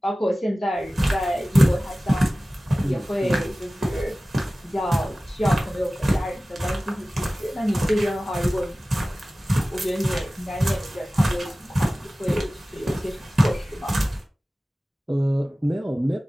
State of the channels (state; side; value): normal; both; correlation 0.97